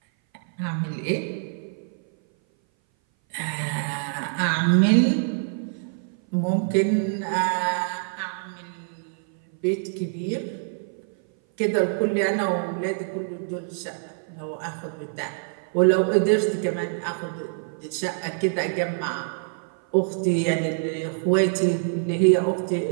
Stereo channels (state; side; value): silent; left; 58 dB below the other